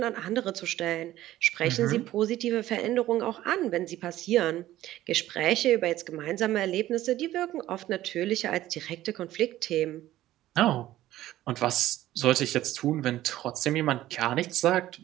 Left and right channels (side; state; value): left; quieter; 14.5 dB